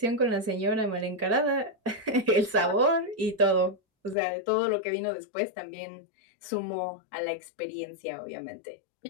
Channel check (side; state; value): right; drops out; at 4.2 s